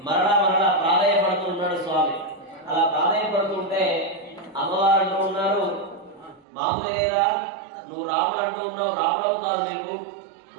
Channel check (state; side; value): drops out; left; at 6.4 s